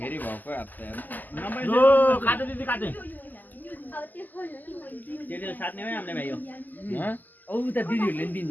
भएको जो काटे दिदी काटे त्यसले साट्ने हो हामीले भाइ हो औ त दिदीहरूले नि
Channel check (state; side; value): late; right; 0.084 ms